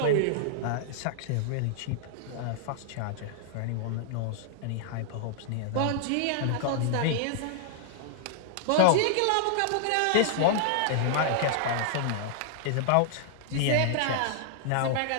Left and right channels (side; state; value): both; different; correlation -0.01